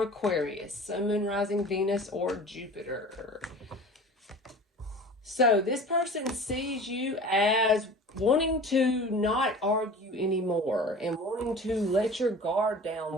Aquarius, Sun, Moon, Rising, Venus, or Jupiter. So this person sees you as wanting to not argue anymore and wanting to let your guard down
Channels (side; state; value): both; normal; correlation 0.40